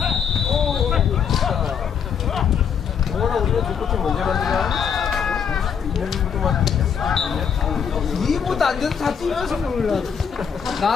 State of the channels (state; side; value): quieter; right; 7.3 dB